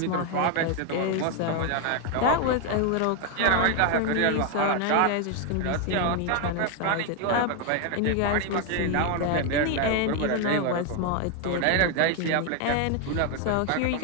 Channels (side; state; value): both; different; correlation 0.01